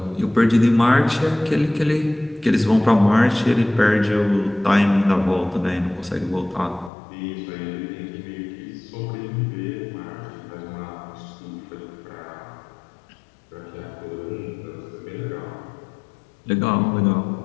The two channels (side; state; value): right; drops out; at 6.9 s